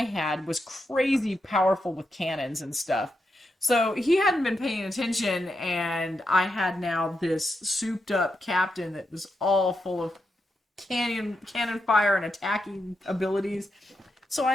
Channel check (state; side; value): normal; both; correlation 0.85